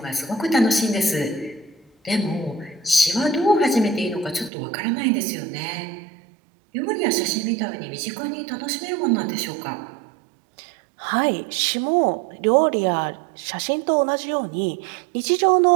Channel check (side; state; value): left; drops out; at 4.5 s